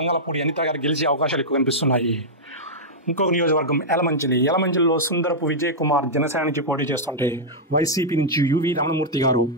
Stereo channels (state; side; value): normal; both; correlation -0.08